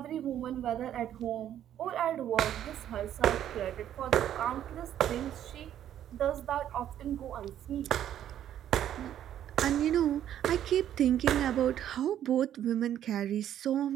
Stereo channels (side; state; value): left; quieter; 10.9 dB